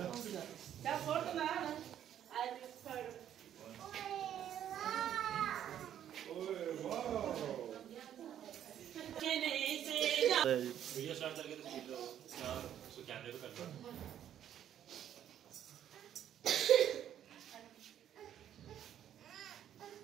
फोड़ तो ना वीडियो स्टार्ट करके तो कैमरे पे कर दो।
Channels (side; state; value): left; quieter; 10.4 dB